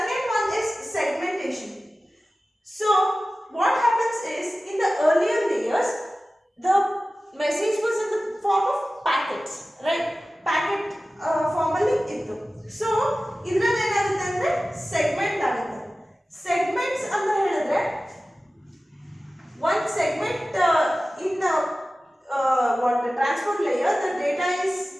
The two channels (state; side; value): normal; both; correlation 0.96